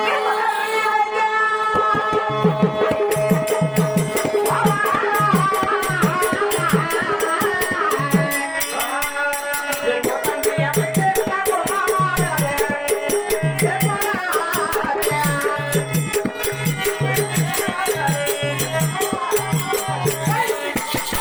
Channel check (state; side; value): identical; both; correlation 1.00